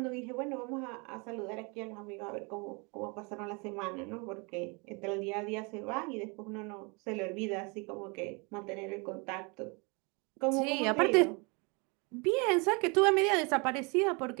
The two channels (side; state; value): left; quieter; 30.8 dB